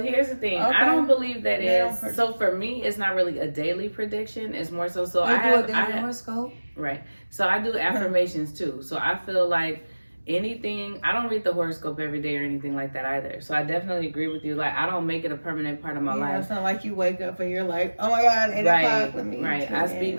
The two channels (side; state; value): both; inverted; correlation -1.00